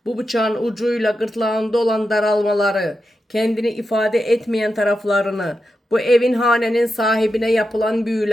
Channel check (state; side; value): normal; both; correlation 0.88